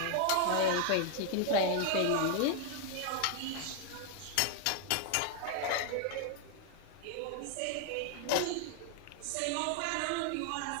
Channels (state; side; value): different; both; correlation 0.00